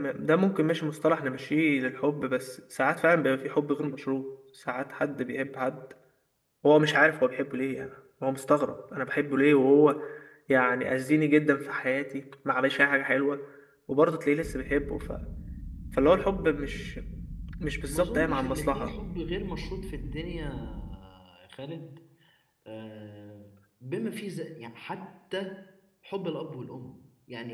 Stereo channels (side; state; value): both; identical; correlation 1.00